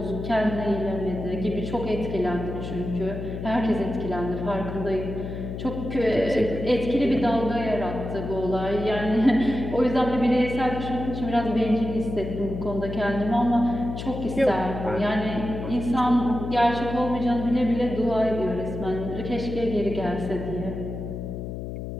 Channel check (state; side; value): noise; left; hum, 7 dB below the sound